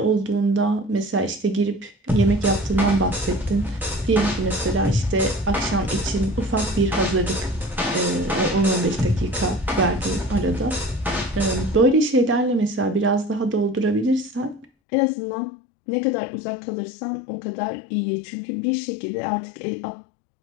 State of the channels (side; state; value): right; drops out; at 14.7 s